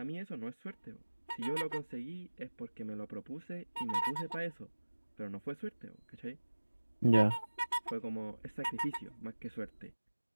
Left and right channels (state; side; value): inverted; both; correlation -1.00